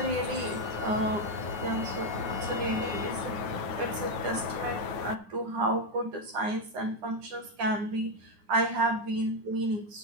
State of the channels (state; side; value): late; left; 9.7 ms